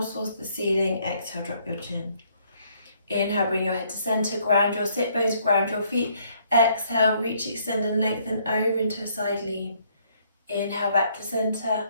towards the ceiling. Exhale, drop your chin. Inhale, bring your head to center, ground your sit bones, ground your feet. Exhale, reach, extend and lengthen over into a side lean. Inhale, back to center.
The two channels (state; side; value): inverted; both; correlation -0.67